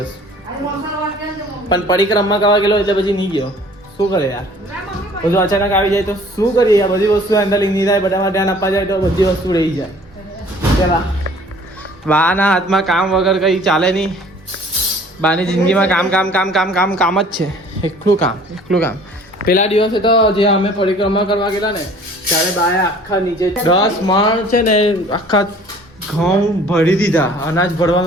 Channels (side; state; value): both; normal; correlation 0.51